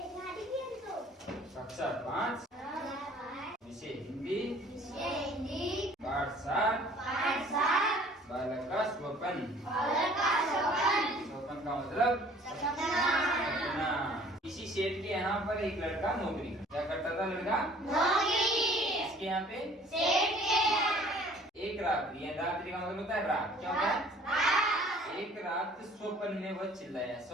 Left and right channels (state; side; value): normal; both; correlation 0.53